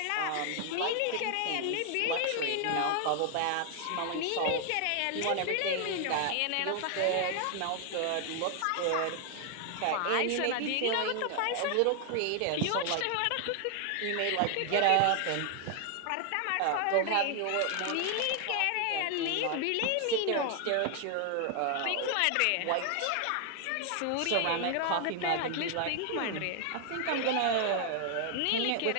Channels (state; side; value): different; both; correlation 0.00